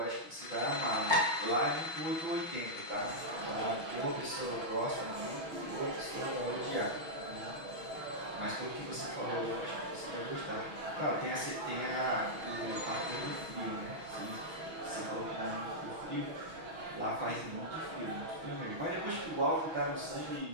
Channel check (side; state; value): left; late; 6.2 ms